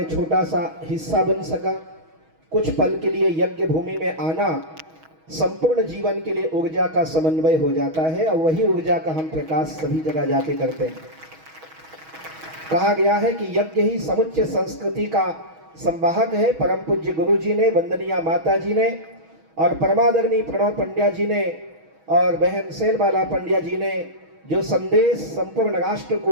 छोटा सा हिस्सा बन सका। कुछ पल के लिए यज्ञ भूमि में आना संपूर्ण जीवन के लिए ऊर्जा का समन्वय हो जाता है और वही ऊर्जा का हम प्रकाश सभी जगह जाके करते हैं। कहा गया है कि यज्ञ ही समुच्चय संस्कृति का संवाहक है। परम पूज्य गुरु जी ने, वंदनीय माता जी ने और परमादरणीय प्रणव पंड्या जी ने और बहन सेलबाला पंड्या जी ने जो संदेश संपूर्ण राष्ट्र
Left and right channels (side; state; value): left; late; 6.3 ms